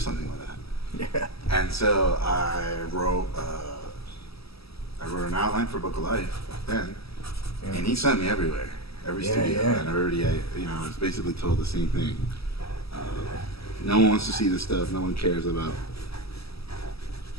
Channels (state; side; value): late; right; 0.77 ms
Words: with that. Yeah. And so I wrote an outline for Book of Life back then, and he sent me everywhere, every studio, and everybody, I was basically told the same thing. No one wants to see this stuff. No one cares about